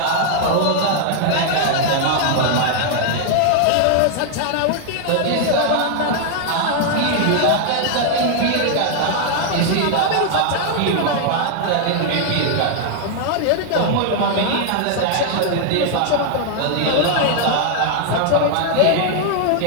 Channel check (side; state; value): both; different; correlation 0.00